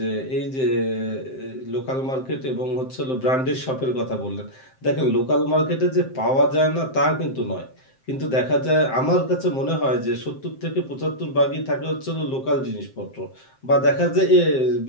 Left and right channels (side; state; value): right; late; 7.6 ms